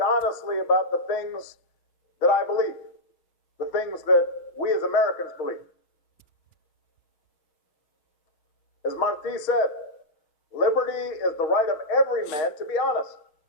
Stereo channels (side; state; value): right; late; 6.1 ms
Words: about the things that I believe, the things that we as Americans believe. As Martí said, liberty is the right of every man to be honest,